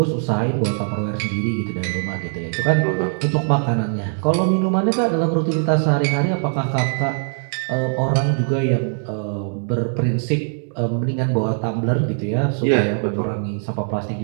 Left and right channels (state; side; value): silent; left; digital silence